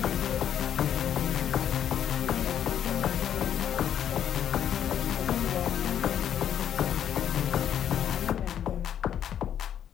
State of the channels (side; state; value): right; quieter; 9.7 dB